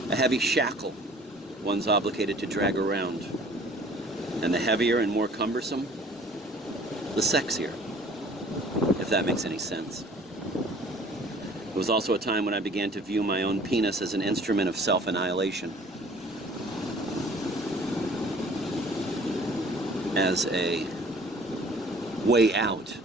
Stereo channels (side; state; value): both; normal; correlation 0.51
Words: a heavy shackle one's obligated to drag around. And the heavier and more cumbersome, the sexier, if that makes any sense. It was also a time when I began to view my own penis as an instrument of self-annihilation, as a way out